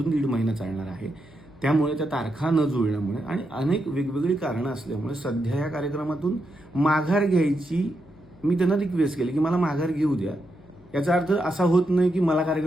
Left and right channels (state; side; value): noise; left; hum, 26 dB below the sound